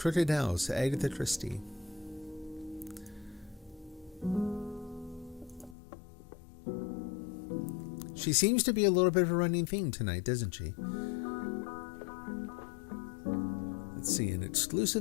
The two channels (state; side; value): drops out; right; at 5.8 s